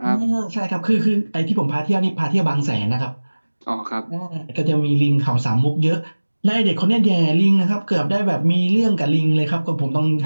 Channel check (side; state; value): both; inverted; correlation -1.00